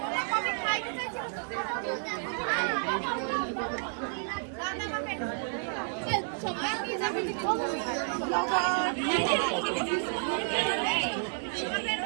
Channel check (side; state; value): left; silent; 57 dB below the other